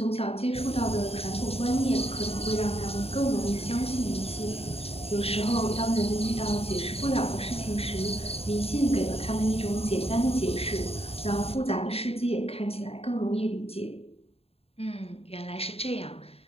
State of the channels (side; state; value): right; late; 0.29 ms